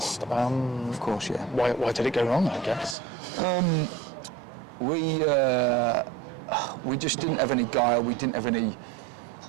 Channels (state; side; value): drops out; left; at 3.0 s